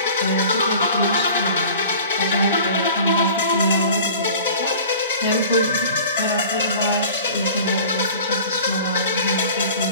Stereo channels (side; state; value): both; inverted; correlation -0.43